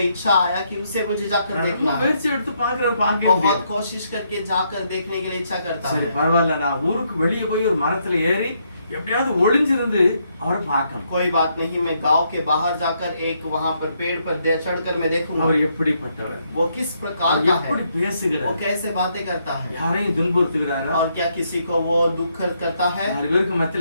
इच्छा आया कि उसे मुझे जाकर देखना है। முயற்சி எடுத்து பார்க்கிறாரு, பார்க்க बहुत முடியாது. कोशिश करके जाकर देखने के लिए इच्छा करता சரி है। பரவாயில்ல, நான் ஊருக்கு வெளியே போய் ஒரு மரத்துல ஏறி எப்படியாவது ஒளிஞ்சிருந்து அவரை பார்க்கணும். कोई बात नहीं, मैं गांव के बाहर जाकर एक वहां पर पेड़ पर चढ़कर मैं देखूंगा அவர் எப்படிப்பட்டவர், वो किस प्रकार அவர் का है, எப்படி वो பேசுகிறார், कैसे बातें करता है, யாரையும் துன்புறுத்துகிறாரா, और क्या किसी को वो दुख करता है, நாலு பேருக்கு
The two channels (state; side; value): inverted; both; correlation -0.75